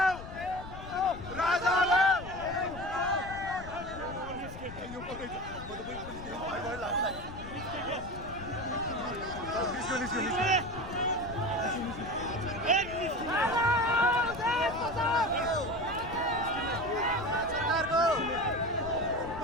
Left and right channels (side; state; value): left; noise; rumble, 12 dB below the sound